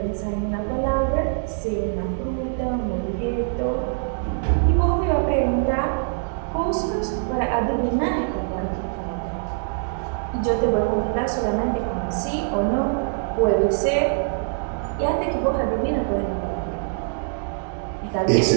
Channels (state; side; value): silent; left; digital silence